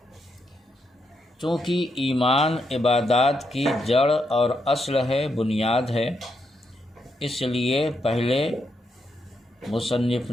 چونکہ ایمان عبادات کی جڑ اور اصل ہے، بنیاد ہے، اس لیے پہلے مصنف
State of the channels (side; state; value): both; normal; correlation 0.81